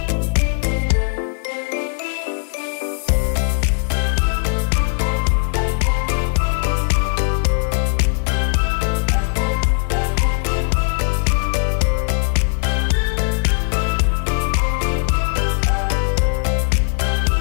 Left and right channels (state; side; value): silent; right; 67 dB below the other